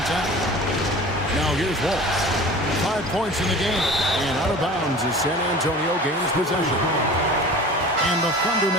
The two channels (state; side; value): normal; both; correlation 0.40